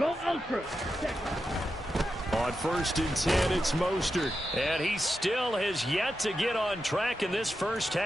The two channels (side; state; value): both; normal; correlation 0.89